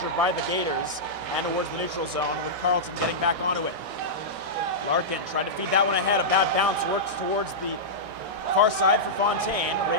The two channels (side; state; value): left; late; 1.6 ms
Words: by the Gators and towards the neutral zone, with Carleton getting back onto it. Larkin tried to feed that one ahead. A bad bounce works towards the far side for Fontaine.